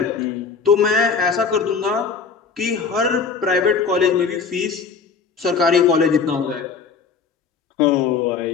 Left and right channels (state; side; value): quieter; right; 5.5 dB